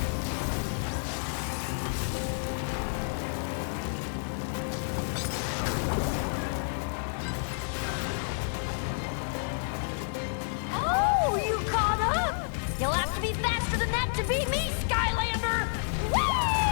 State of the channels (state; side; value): silent; right; digital silence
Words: Oh, you caught up! You'll have to be faster than that to beat me, Skylander!